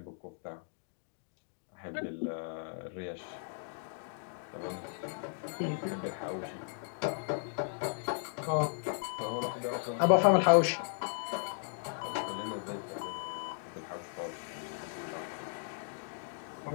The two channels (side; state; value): right; silent; digital silence